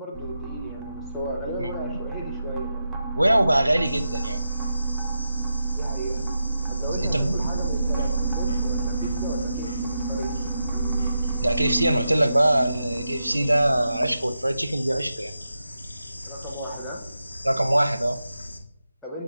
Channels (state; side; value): inverted; both; correlation -0.88